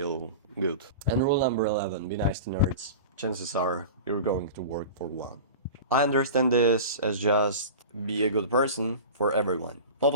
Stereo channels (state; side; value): inverted; both; correlation -0.33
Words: good. And rule number 11, be nice to nerds. Chances are you're going to work for one. I understand this as just be a good person for everyone. Not